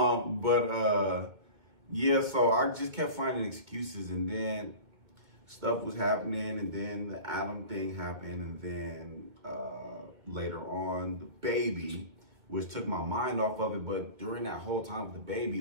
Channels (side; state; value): left; late; 2.2 ms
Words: Yeah, so I just kept finding excuses, and then stuff was happening, and then the Adam thing happened, and then later on the baby, which took my mind off of it. But during that whole time with the